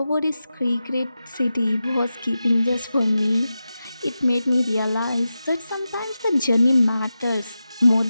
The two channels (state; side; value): inverted; both; correlation -0.92